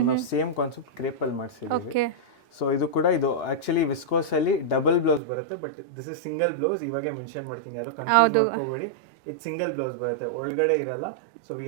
ನಾವು ಸೇಮ್ ಕಾನ್ಸೆಪ್ಟ್ ಕ್ರೇಪ್ ಅಲ್ಲಿ ಮಾಡಿಸಿದೀವಿ ಸೊ ಇದು ಕೂಡ ಇದು ಆಕ್ಚುಲಿ ವಿಸ್ಕೋಸ್ ಅಲ್ಲಿ ಡಬಲ್ ಬ್ಲೌಸ್ ಬರುತ್ತೆ but this is single blouse ಇವಾಗೆ ಮೆನ್ಷನ್ ಮಾಡ್ತೀನಿ ಯಾರು ಕನ್ಫ್ಯೂಸ್ ಮಾಡ್ಕೋಬೇಡಿ ಇದು ಸಿಂಗಲ್ ಬ್ಲೌಸ್ ಬರುತ್ತೆ ಒಳಗಡೆ ಇರಲ್ಲ so we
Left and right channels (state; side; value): drops out; left; at 5.2 s